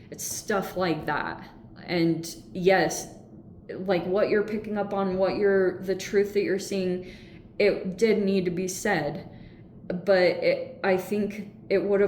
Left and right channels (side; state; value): both; identical; correlation 1.00